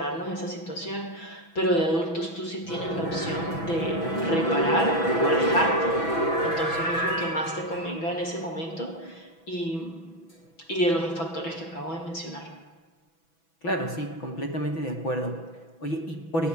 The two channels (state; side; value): late; right; 6.1 ms